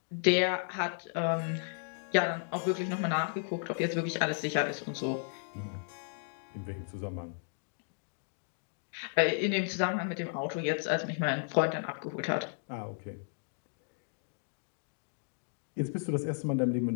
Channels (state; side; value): silent; right; digital silence